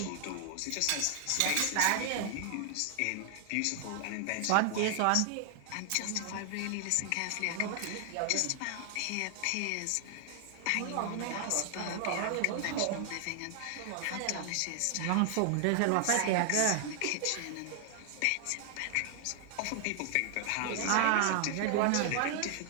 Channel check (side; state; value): both; different; correlation 0.00